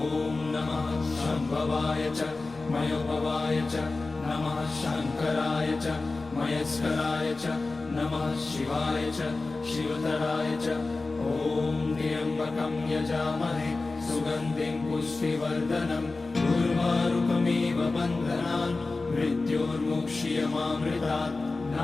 नमः शम्भवाय च मयोभवाय च नमः शङ्कराय च मयस्कराय च नमः शिवाय च शिवतराय च। ॐ त्र्यम्बकं यजामहे सुगन्धिं पुष्टिवर्धनम् उर्वारुकमिव बन्धनान् मृत्योर्मुक्ष्यमामृतात्।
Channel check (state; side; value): quieter; right; 3.5 dB